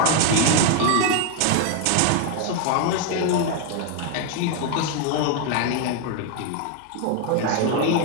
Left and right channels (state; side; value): different; both; correlation 0.01